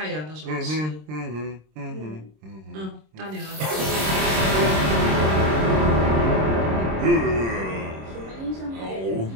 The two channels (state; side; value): late; left; 26 ms